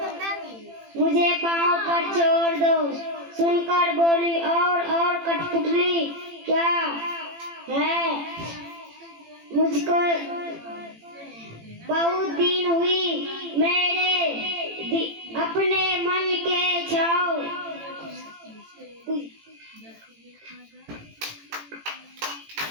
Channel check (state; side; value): late; left; 18 ms